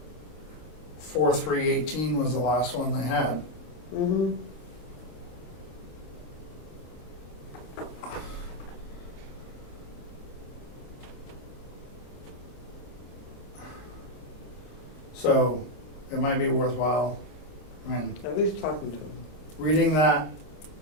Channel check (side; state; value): right; late; 26 ms